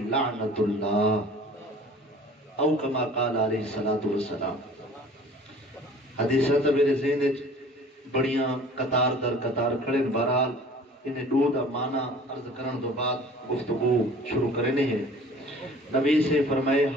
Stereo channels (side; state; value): both; normal; correlation 0.47